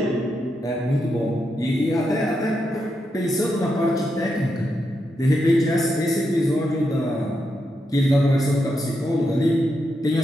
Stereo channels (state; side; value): normal; both; correlation 0.84